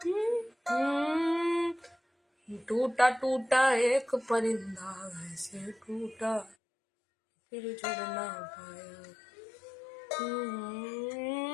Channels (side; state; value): right; drops out; at 6.6 s